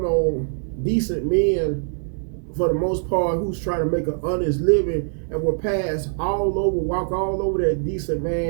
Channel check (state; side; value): silent; left; digital silence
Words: on decent men for the most part who's trying to make an honest living, and will pass all over, walk all over that decent